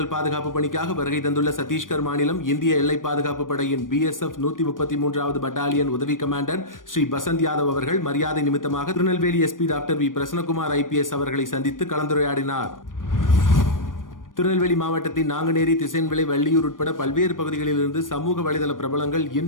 பாதுகாப்பு பணிக்காக வருகை தந்துள்ள சத்தீஸ்கர் மாநிலம் இந்திய எல்லை பாதுகாப்பு படையின் BSF 133வது பட்டாலியன் உதவி கமாண்டர் ஸ்ரீ பசந்த் யாதவ் அவர்கள் மரியாதை நிமித்தமாக Tirunelveli SP doctor V Prasannakumar IPS அவர்களை சந்தித்து கலந்துரையாடினார். திருநெல்வேலி மாவட்டத்தின் நாங்குநேரி, திசையன்விளை, வள்ளியூர் உட்பட பல்வேறு பகுதிகளிலிருந்து சமூக வலைதள பிரபலங்கள்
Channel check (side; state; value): right; late; 0.89 ms